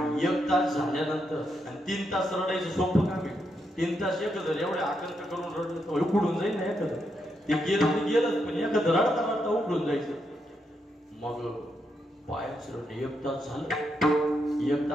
एक तास झाल्यानंतर आणि 3 तास रडायचं सोपं काम आहे. 3 तास एकत्र एवढे आकांत करून रडलं तर उकडून जाईल ना एखादं. ते गेलं ते गेलंच, पण एखादं रडता रडता उकडून जायचं. मग पायाचं रडणं 1 तास झालं. 1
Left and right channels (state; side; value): normal; both; correlation 0.81